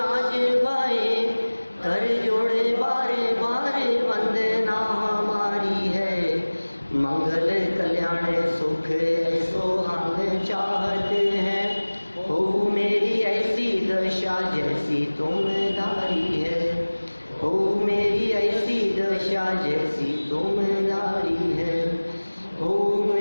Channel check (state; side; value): inverted; both; correlation -1.00